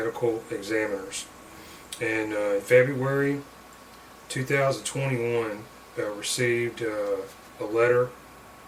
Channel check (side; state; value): both; identical; correlation 1.00